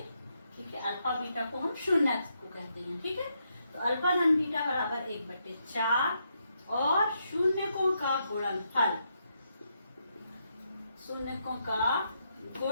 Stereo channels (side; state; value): both; inverted; correlation -0.79